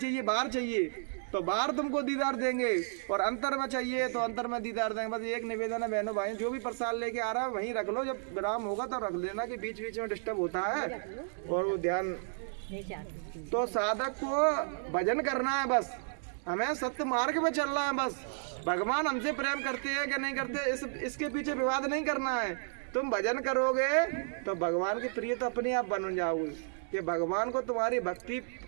बाहर चाहिए, तो बाहर तुमको दीदार देंगे, और अंतर में चाहिए तो अंतर में दीदार देंगे। बस एक निवेदन है बहनों भाई, जो भी प्रसाद लेके आ रहा है वहीं रख लो, जब विराम होगा तो रख देना, कि बीच बीच में डिस्टर्ब होता है और वो ध्यान। तो साधक को भजन करना है, बस हमें सत्य मार्ग में चलना है। बस भगवान हमसे प्रेम करते हैं कि नहीं करते इसके पीछे विवाद नहीं करना है। तुम भजन करोगे तो भगवान के प्रिय तो अपने आप बन जाओगे, कि भगवान को तुम्हारी भक्ति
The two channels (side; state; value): left; silent; digital silence